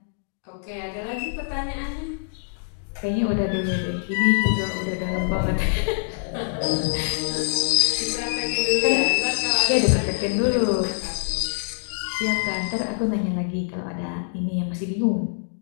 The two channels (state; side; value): silent; right; digital silence